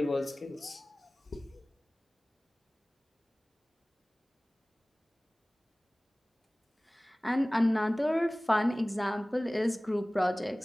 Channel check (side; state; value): both; normal; correlation 0.98